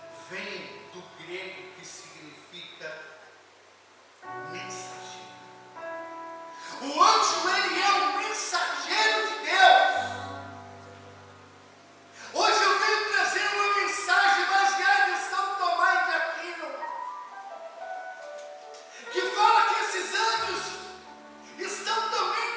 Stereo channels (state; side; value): identical; both; correlation 1.00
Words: vem do grego que significa mensageiro. O anjo, ele é um mensageiro de Deus. Hoje eu venho trazer uma mensagem baseada em São Tomás de Aquino, que fala que esses anjos estão